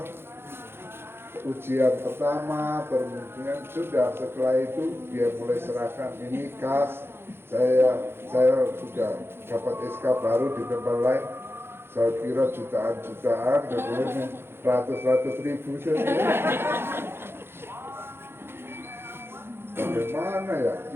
ujian pertama, kemudian sudah setelah itu dia mulai serahkan ini kas, saya sudah dapat SK baru di tempat lain. Saya kira jutaan-jutaan, kemudian ratus-ratus ribu saja. Bagaimana ya?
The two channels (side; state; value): left; late; 0.11 ms